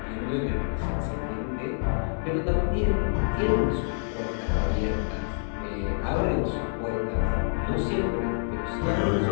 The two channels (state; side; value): silent; right; digital silence